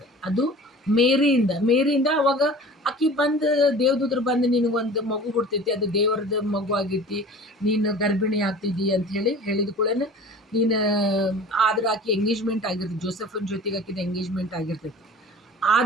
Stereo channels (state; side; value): normal; both; correlation 0.41